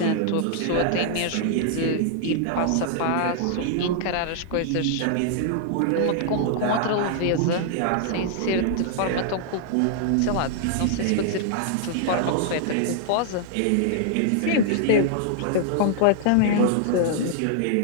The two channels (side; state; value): both; different; correlation -0.01